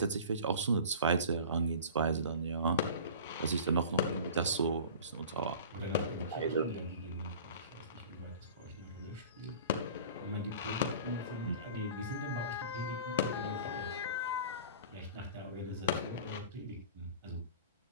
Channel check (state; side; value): inverted; both; correlation -0.40